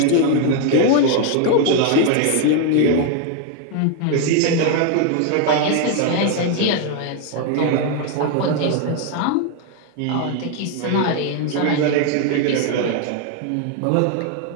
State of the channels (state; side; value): different; both; correlation 0.01